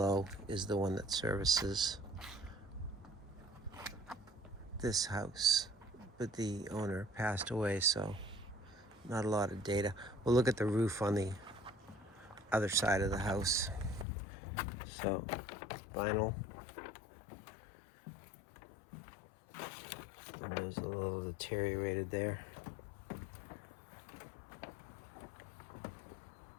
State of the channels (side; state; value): right; drops out; at 14.1 s